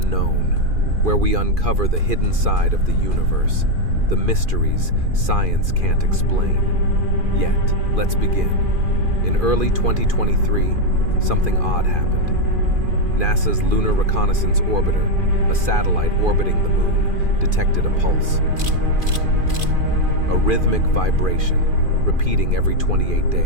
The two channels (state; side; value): late; left; 2.4 ms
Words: where we uncover the hidden side of the universe, the mysteries science can't explain. Yet, let's begin. In early 2023, something odd happened. NASA's Lunar Reconnaissance Orbiter, a satellite orbiting the moon, detected a pulse. A rhythmic vibration, repeating every 28